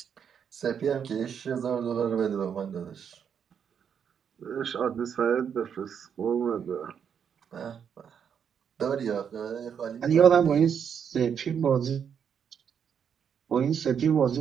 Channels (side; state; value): left; quieter; 7.7 dB